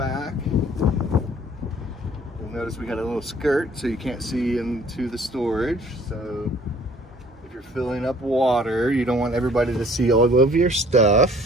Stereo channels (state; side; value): normal; both; correlation 0.56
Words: and Notice we got a little skirt so you can't see into the storage. So if you're filling up water, you don't want everybody to see all of your